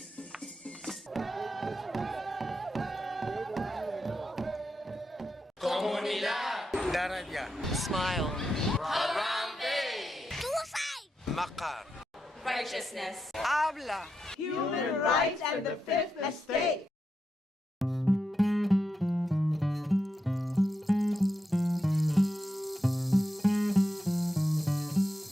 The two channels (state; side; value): normal; both; correlation 0.86